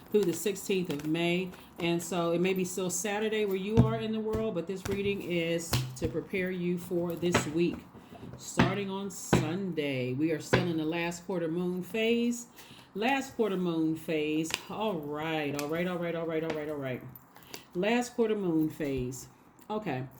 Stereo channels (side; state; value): both; identical; correlation 1.00